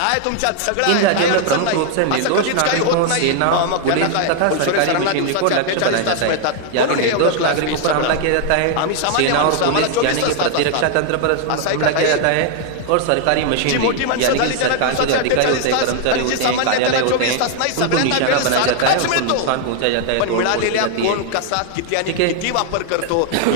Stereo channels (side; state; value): both; different; correlation 0.00